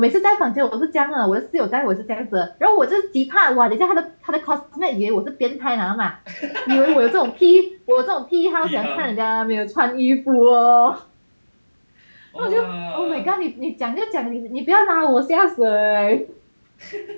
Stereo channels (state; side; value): inverted; both; correlation -1.00